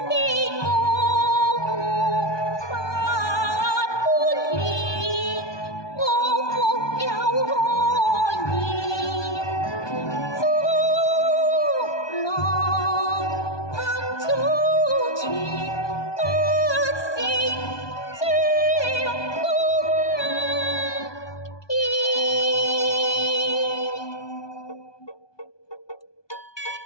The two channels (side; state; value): right; late; 1.2 ms